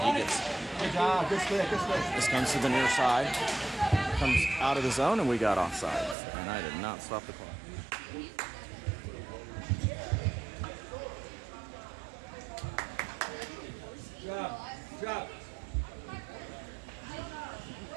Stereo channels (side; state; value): left; drops out; at 6.2 s